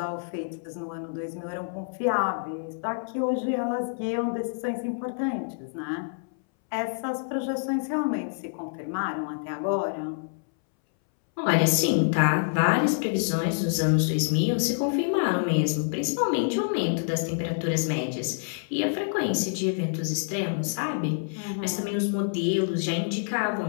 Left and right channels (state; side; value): silent; right; 60 dB below the other